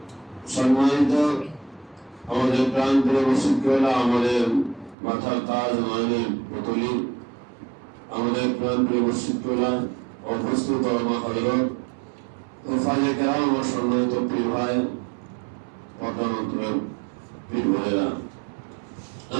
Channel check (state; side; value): drops out; left; at 5.0 s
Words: সম্মানিত আমাদের প্রাণপ্রিয় মুর্শিদওয়ালা, আমাদের মাথার তাজ মানের পুতুলি, আমাদের প্রাণপ্রিয় মুর্শিদওয়ালা উপস্থিত ওলামা হযরত ও ফাজে কেরাম ও সম্মানিত পীর ভাই, পদ্মানন্তরের পীর ভাইরা,